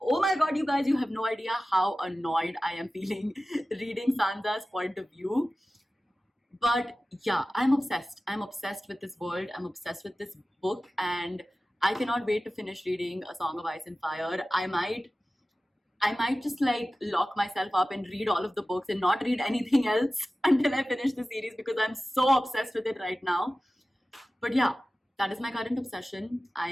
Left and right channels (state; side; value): normal; both; correlation 0.96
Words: oh my god, you guys, you have no idea how annoyed I am feeling reading Sansa's point of view. But yeah, I'm obsessed. I'm obsessed with this world. I'm obsessed with this book, and I cannot wait to finish reading A Song of Ice and Fire. I might just like lock myself up and read all of the books and not read anything else until I finish the series because I'm so obsessed with it right now. But yeah, that is my current obsession. I